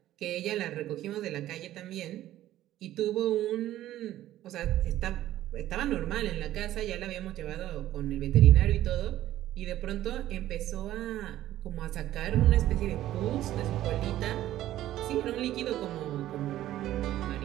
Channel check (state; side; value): quieter; left; 13.7 dB